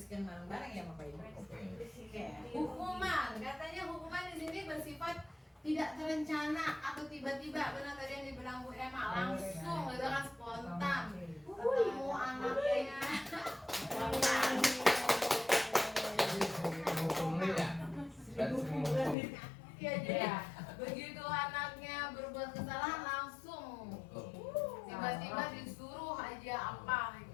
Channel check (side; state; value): right; drops out; at 19.2 s